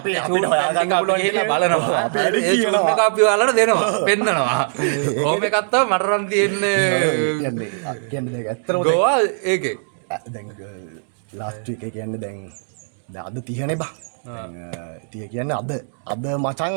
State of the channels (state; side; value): silent; left; digital silence